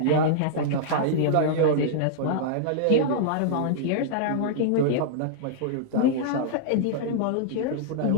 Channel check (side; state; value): both; different; correlation -0.02